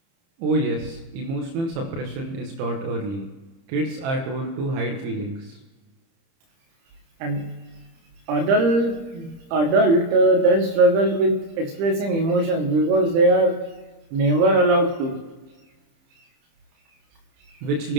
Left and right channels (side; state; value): left; late; 30 ms